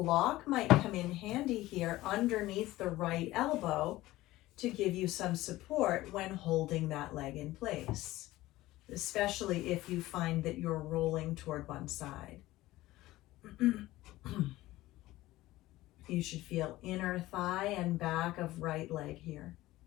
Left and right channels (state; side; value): quieter; right; 17.2 dB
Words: might come in handy here underneath the right elbow to give you some support when holding that leg in place, especially if you find that you're rolling toward one side. You should feel inner thigh and back of right leg here.